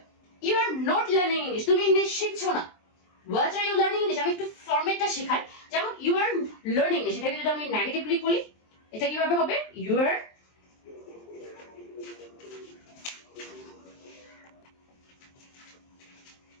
You are not learning English, তুমি ইংলিশ শিখছো না। What are you learning English, আমি একটু ফরম্যাটটা শেখাই। যেমন ইউ আর লার্নিং ইংলিশ, এটাকে যদি আমি নেগেটিভলি বলি, এটা কিভাবে হবে? You are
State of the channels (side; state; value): right; late; 23 ms